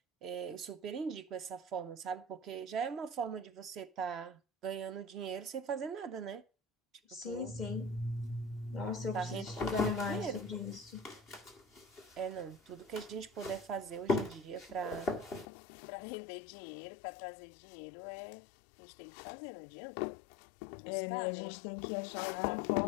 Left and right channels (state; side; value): drops out; right; at 15.5 s